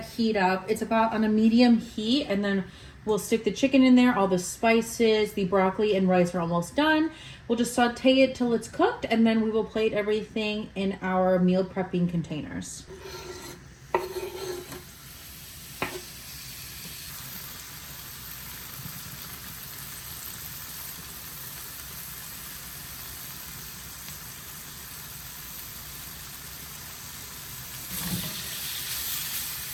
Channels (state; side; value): identical; both; correlation 1.00